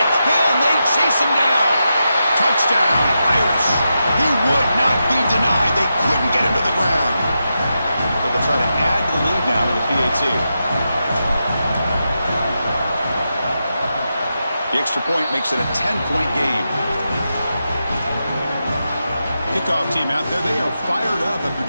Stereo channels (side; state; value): both; inverted; correlation -0.87